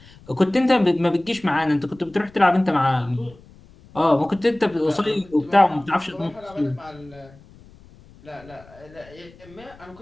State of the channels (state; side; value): noise; left; rumble, 24 dB below the sound